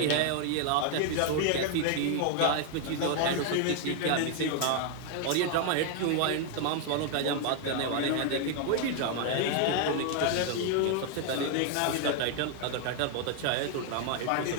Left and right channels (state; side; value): different; both; correlation 0.00